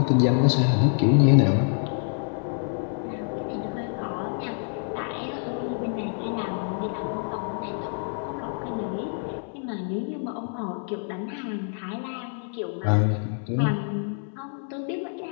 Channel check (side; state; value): right; silent; 58 dB below the other